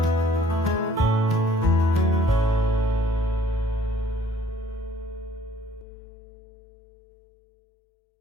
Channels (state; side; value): drops out; right; at 5.9 s